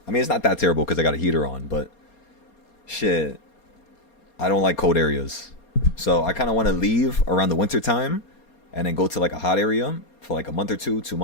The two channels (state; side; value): late; right; 4.3 ms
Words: I mean, it's not that terrible because I got a heater on, but shit, I don't like cold areas. So I kind of want to leave around the winter time and then go to like a hot area for like a month or 2